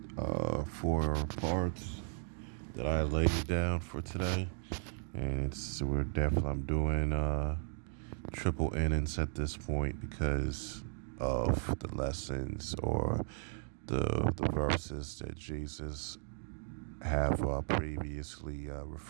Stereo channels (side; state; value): left; silent; 54 dB below the other